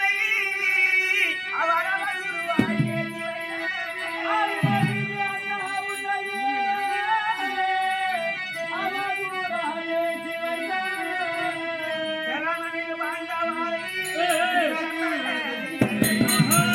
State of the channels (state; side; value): identical; both; correlation 1.00